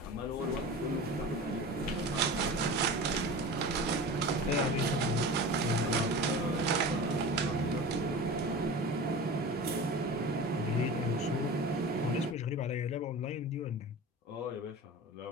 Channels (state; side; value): normal; both; correlation 0.33